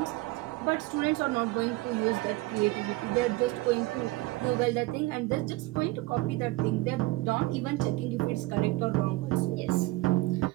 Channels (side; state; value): left; quieter; 20.2 dB